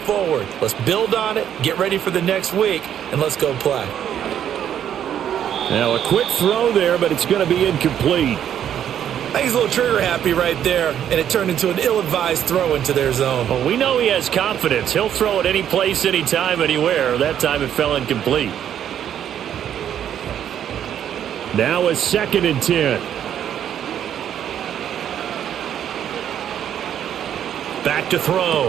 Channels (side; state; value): left; quieter; 9.8 dB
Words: Let's build on it, get ready for the next week, and let's go play. Now a quick throw there, but it's going to be incomplete. I think he's a little trigger happy right there, and it turned into an ill-advised throw into their zone. Well, we know he has confidence. He'll throw it any place, anytime, anywhere. That time it fell incomplete. Now a 2nd and 10. Back to